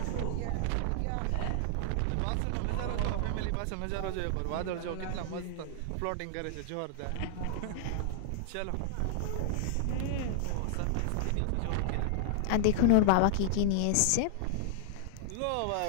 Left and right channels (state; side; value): different; both; correlation 0.00